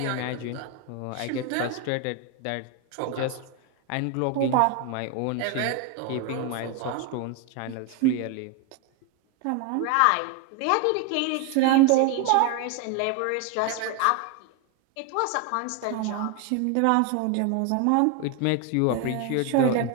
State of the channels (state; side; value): different; both; correlation 0.01